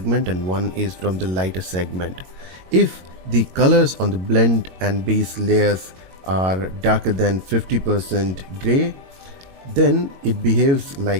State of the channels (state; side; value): late; left; 22 ms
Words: and one is from the lighter segment. If the colors on the blend and base layers are darker than 50% gray, then it behaves